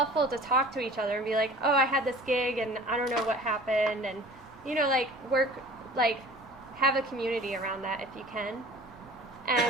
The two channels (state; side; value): normal; both; correlation 0.45